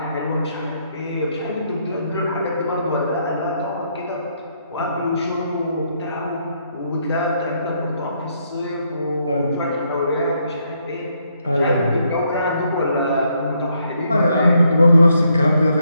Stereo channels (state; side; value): inverted; both; correlation -0.74